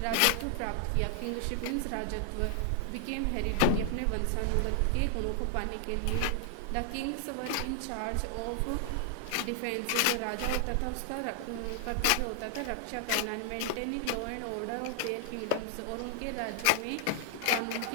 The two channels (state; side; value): different; both; correlation 0.00